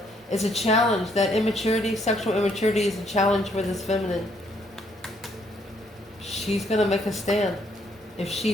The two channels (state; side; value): normal; both; correlation 0.69